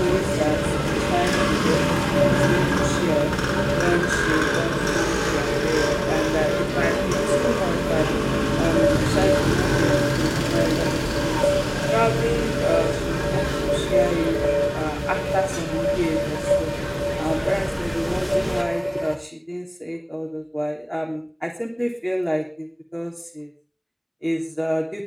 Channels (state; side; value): identical; both; correlation 1.00